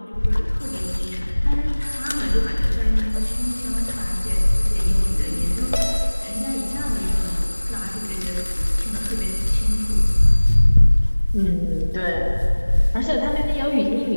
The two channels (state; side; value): inverted; both; correlation -1.00